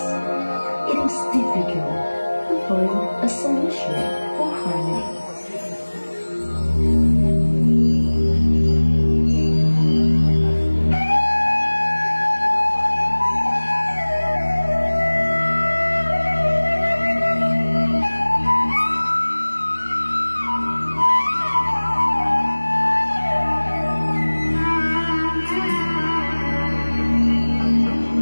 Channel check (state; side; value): inverted; both; correlation -1.00